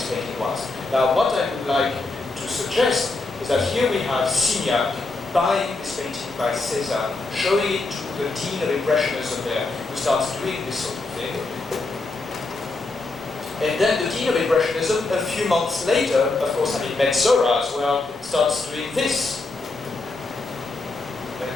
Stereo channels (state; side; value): quieter; right; 3.4 dB